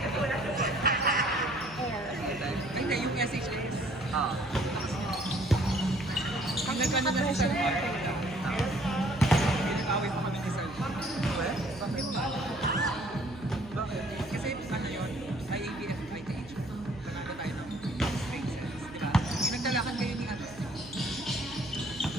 hindi. Yung SHS. Ah. Pag nagkano na si Sir Mark, pinag-away pa kami ni Sir Mark. Bakit? Bakit? Kasi ano yun, IABF, ITH. Panalo tayo ng straight sets, di ba? Yung nagdalakan kayo ni ano.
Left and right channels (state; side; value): noise; right; hum, 19 dB below the sound